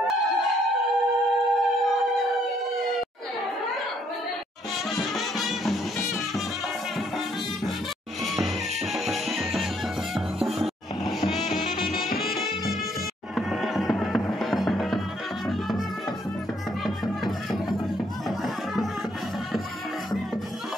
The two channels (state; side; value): normal; both; correlation 0.69